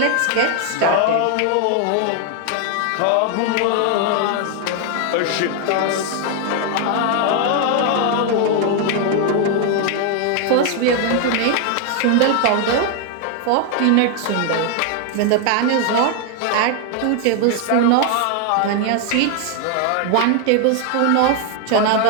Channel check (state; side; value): different; both; correlation 0.01